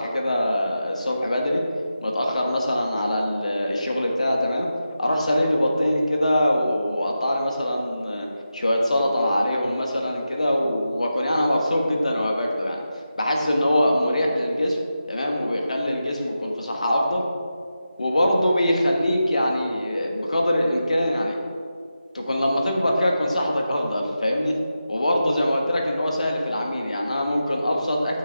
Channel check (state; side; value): inverted; both; correlation -0.90